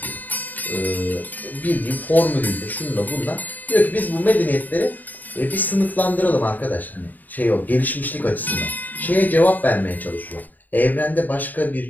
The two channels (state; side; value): late; right; 0.084 ms